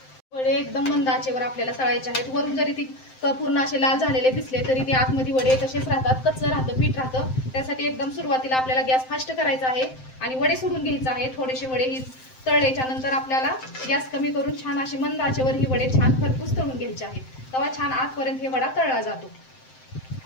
वडे एकदम मंद आचेवर आपल्याला तळायचे आहेत. वरून जरी ती पूर्ण असे लाल झालेले दिसले तरी ते आतमध्ये वडे तसेच राहतात, कच्चं राहतं, पीठ राहतं. त्यासाठी एकदम सुरुवातीला आपल्याला गॅस फास्ट करायचा आहे आणि वडे सोडून घ्यायचे आहे. थोडेसे वडे ही तळल्याच्या नंतर आपल्याला गॅस कमी करून छान असे मंद आचेवर ही वडे छान खरपूस तळून घ्यायचे आहेत. तेव्हा छान आतपर्यंत हे वडा तळला जातो.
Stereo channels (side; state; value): right; late; 7.7 ms